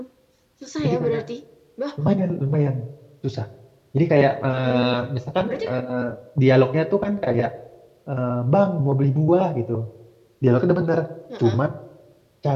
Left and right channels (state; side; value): identical; both; correlation 1.00